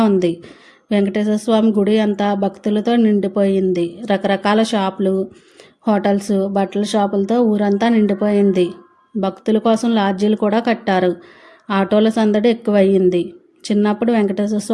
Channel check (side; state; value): both; identical; correlation 1.00